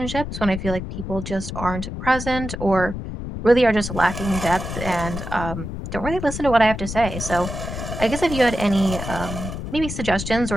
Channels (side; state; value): left; noise; rumble, 7 dB below the sound